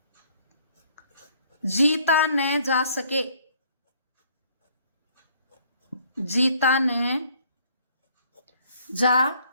जीता न जा सके, जीता न जा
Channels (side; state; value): both; inverted; correlation -0.61